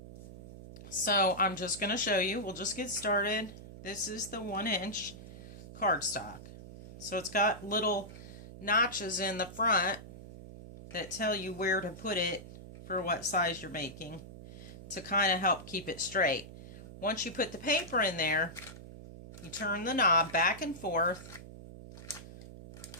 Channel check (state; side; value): noise; right; hum, 15 dB below the sound